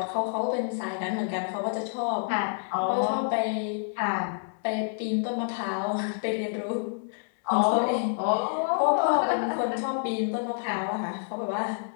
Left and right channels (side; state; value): right; silent; digital silence